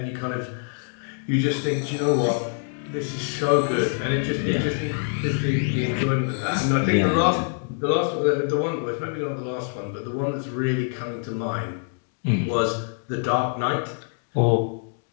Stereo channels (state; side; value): silent; right; 56 dB below the other